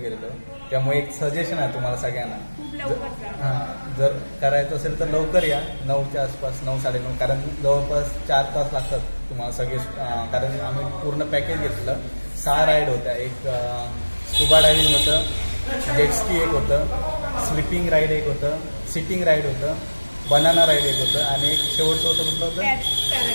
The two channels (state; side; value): inverted; both; correlation -1.00